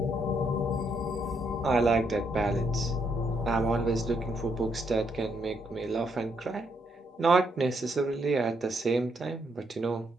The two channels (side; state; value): both; normal; correlation 0.75